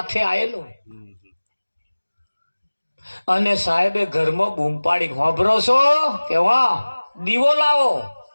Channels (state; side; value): inverted; both; correlation -1.00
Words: આવેલો અને સાહેબે ઘરમાં બૂમ પાડી, હોભરો છો કે વાહ દીવો લાવો.